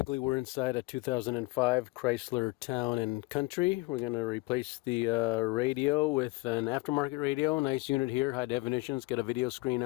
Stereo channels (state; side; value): quieter; right; 23.5 dB